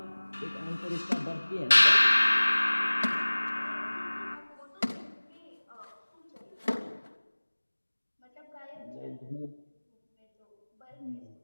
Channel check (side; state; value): both; inverted; correlation -1.00